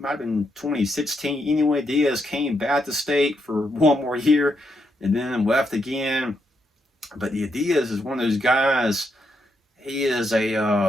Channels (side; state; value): both; normal; correlation 0.80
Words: have been 2016. Anyway, Diaz came back to State for one more year and then left again. But Diaz is one of those guys. He's